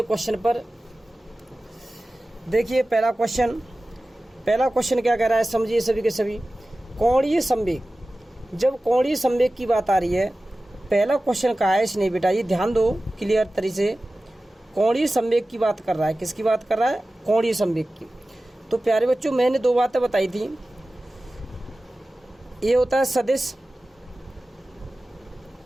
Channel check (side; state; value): both; normal; correlation 0.96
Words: क्वेश्चन पर। देखिए पहला क्वेश्चन क्या कह रहा है, समझिए सभी के सभी। कोणीय संवेग। जब कोणीय संवेग की बात आ रही है, पहला क्वेश्चन कहा है इसने, बेटा ये ध्यान दो क्लियर तरीके से। कोणीय संवेग की बात कर रहा है। किसकी बात कर रहा है? कोणीय संवेग की। तो प्यारे बच्चों मैंने दो बातें बताई थी। ये होता है सदिश,